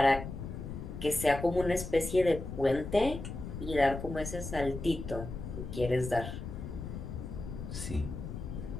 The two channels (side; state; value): left; noise; rumble, 7 dB below the sound